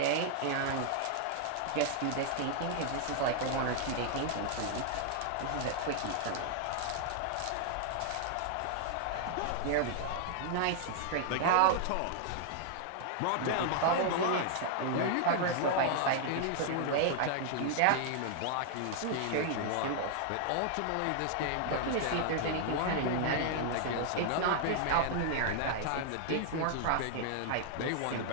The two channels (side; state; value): both; different; correlation 0.00